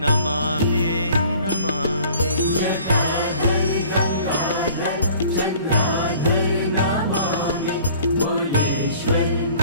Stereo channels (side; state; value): both; inverted; correlation -0.51